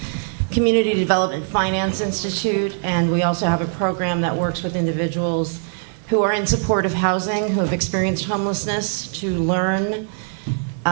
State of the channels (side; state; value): left; silent; digital silence